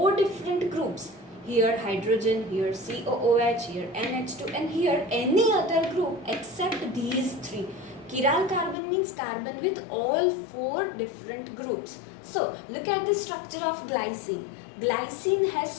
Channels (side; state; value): right; drops out; at 8.8 s